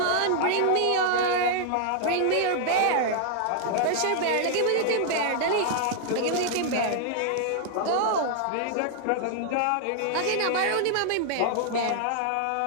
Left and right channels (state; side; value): different; both; correlation -0.01